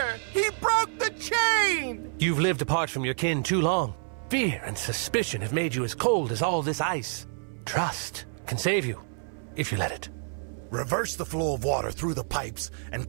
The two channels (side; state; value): left; silent; 59 dB below the other